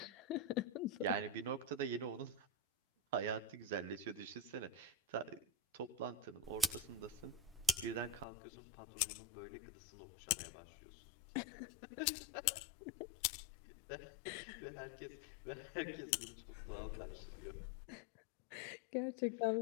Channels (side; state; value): right; drops out; at 8.2 s